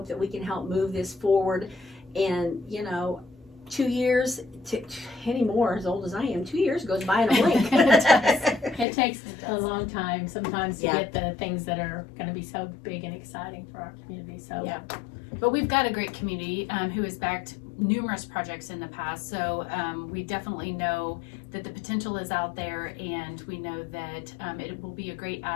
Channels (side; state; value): right; drops out; at 8.8 s